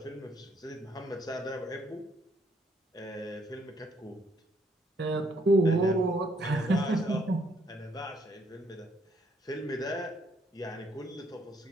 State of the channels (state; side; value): normal; both; correlation 0.69